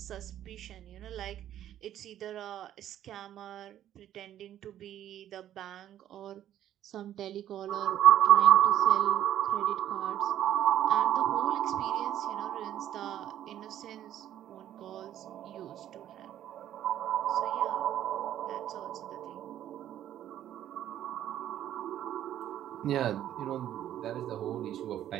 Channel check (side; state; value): left; quieter; 11.6 dB